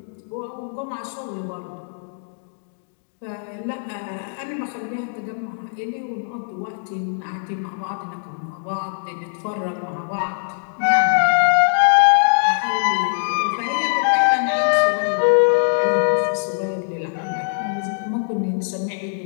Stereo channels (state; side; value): silent; right; 60 dB below the other